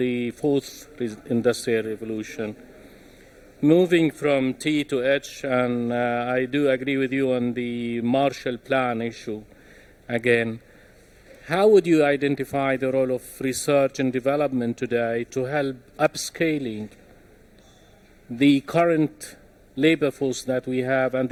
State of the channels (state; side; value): identical; both; correlation 1.00